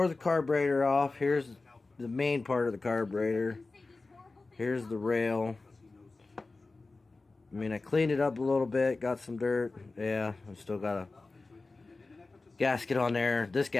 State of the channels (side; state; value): right; quieter; 3.5 dB